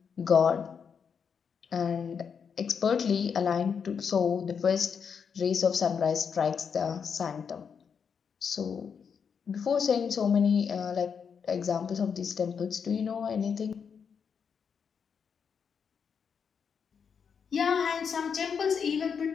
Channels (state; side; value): quieter; right; 6.6 dB